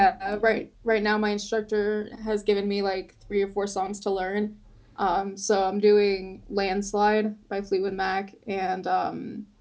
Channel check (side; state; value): both; identical; correlation 1.00